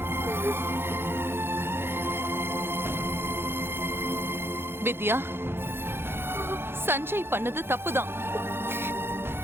வித்யா, சஞ்சய் பண்ணது தப்புதான்.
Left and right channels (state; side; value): late; left; 0.11 ms